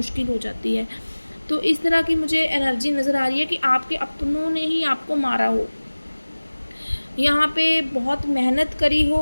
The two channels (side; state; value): both; inverted; correlation -1.00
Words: हो जाती है। तो इस तरह की मुझे एनर्जी नज़र आ रही है कि आपके अपनों ने ही आपको मारा हो, यहाँ पे बहुत मेहनत करी हो